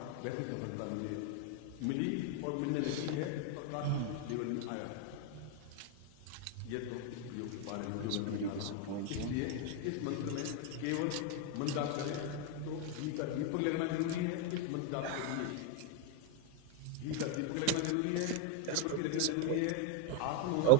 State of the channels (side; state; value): both; different; correlation 0.01